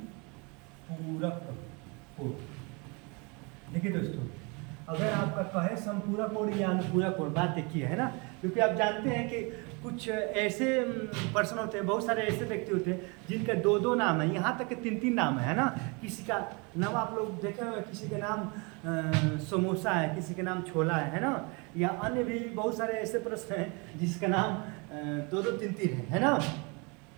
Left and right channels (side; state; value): left; quieter; 30.5 dB